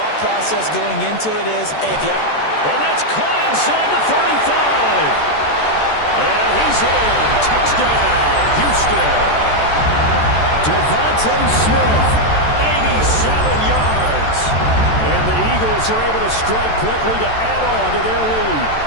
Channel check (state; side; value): late; right; 14 ms